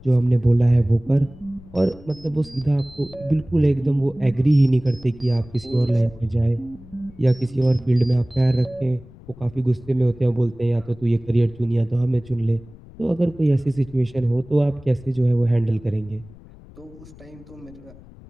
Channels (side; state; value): left; noise; rumble, 21 dB below the sound